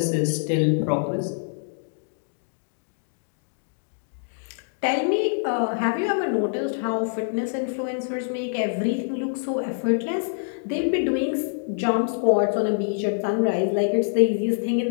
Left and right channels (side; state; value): right; silent; digital silence